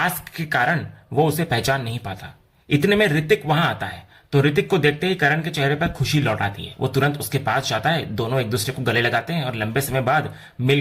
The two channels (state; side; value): identical; both; correlation 1.00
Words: के कारण वो उसे पहचान नहीं पाता। इतने में ऋतिक वहां आता है। तो ऋतिक को देखते ही करण के चेहरे पर खुशी लौट आती है। वो तुरंत उसके पास जाता है। दोनों एक दूसरे को गले लगाते हैं और लंबे समय बाद